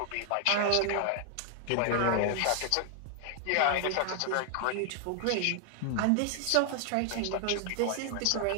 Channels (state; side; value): different; both; correlation 0.00